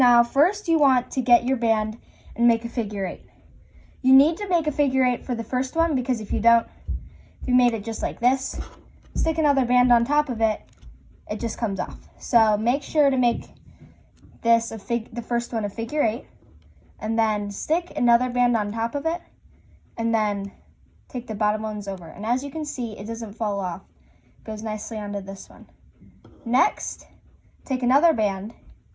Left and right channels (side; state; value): both; identical; correlation 1.00